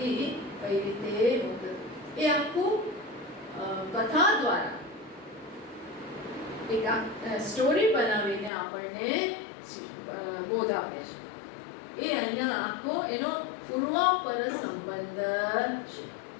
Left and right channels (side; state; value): right; drops out; at 8.5 s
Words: કઈ રીતે મુક્ત. એ આખું કથા દ્વારા એક સ્ટોરી બનાવીને આપણને બોધ આપે છે. એ અહીંયા આખો એનો પૂર્વાપર સંબંધ છે.